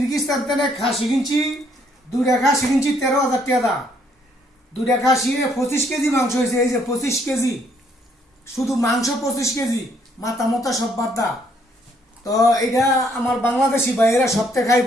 থেকে খাসি কিনছি, 2টা খাসি কিনছি 13,000 টাকা। 2টা খাসি 25 কেজি মাংস হয়েছে। এই যে 25 কেজি, শুধু মাংস 25 কেজি, মাথা মতা সব বাদা। তো এটা আমার বাংলাদেশি ভাইয়েরা সপ্তাহে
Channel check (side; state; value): both; normal; correlation 0.68